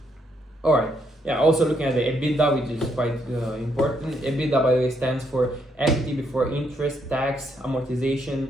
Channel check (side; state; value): both; normal; correlation 0.74